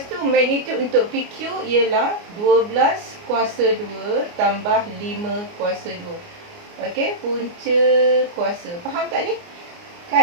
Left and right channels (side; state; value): left; late; 29 ms